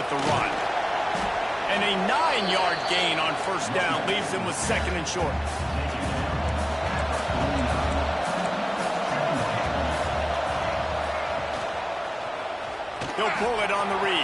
the run. And a 9-yard gain on first down leaves them with 2nd and short. He'll pull it on the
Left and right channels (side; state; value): both; identical; correlation 1.00